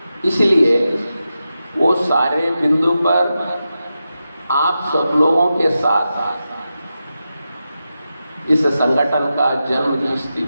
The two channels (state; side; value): inverted; both; correlation -0.90